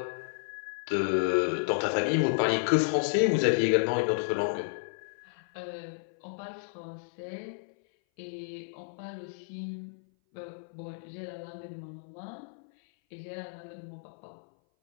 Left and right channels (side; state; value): right; silent; 57 dB below the other